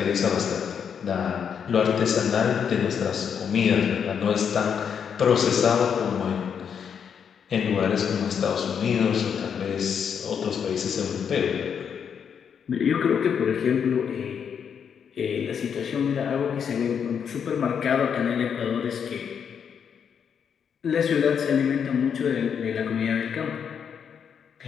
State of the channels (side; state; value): right; quieter; 7.4 dB